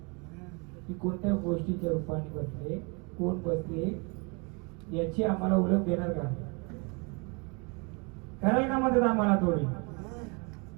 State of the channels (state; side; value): quieter; left; 31.8 dB